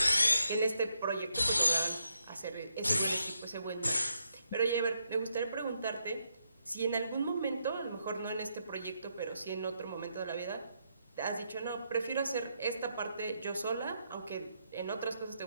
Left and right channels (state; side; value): inverted; both; correlation -0.80